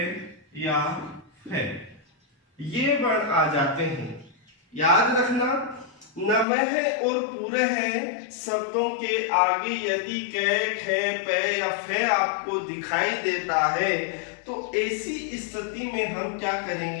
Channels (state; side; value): drops out; right; at 6.5 s